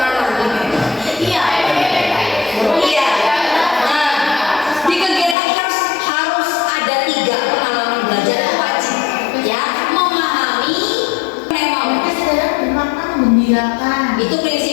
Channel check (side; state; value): right; drops out; at 5.4 s